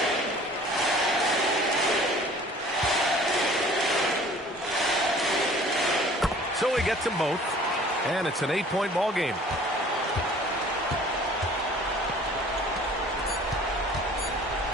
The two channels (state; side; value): normal; both; correlation 0.50